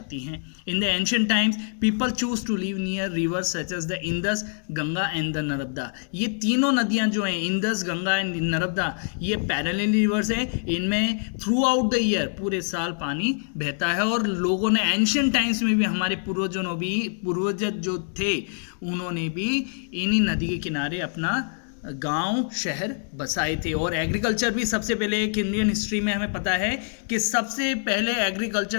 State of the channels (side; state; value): right; silent; 59 dB below the other